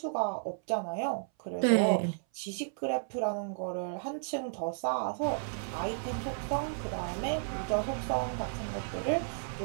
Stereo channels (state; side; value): silent; left; 56 dB below the other